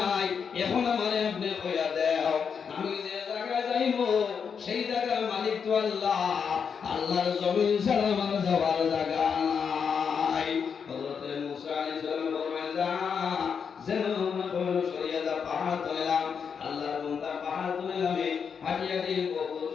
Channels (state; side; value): quieter; right; 6.6 dB